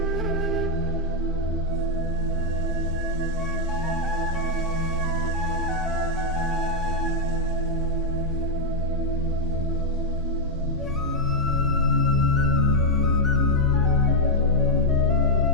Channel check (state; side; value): normal; both; correlation -0.01